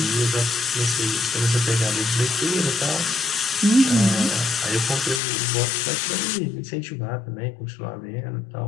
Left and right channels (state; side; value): drops out; right; at 5.2 s